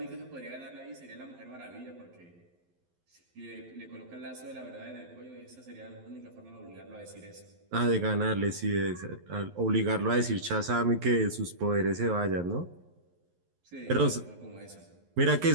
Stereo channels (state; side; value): late; left; 11 ms